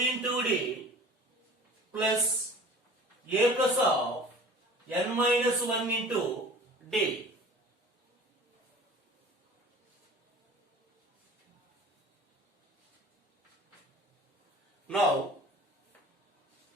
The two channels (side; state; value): both; normal; correlation 0.44